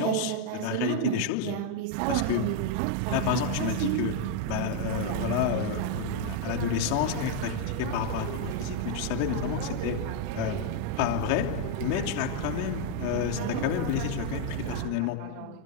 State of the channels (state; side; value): different; both; correlation 0.00